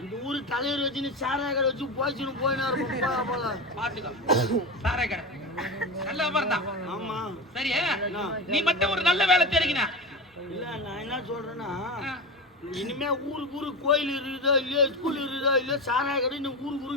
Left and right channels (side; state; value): both; normal; correlation 0.22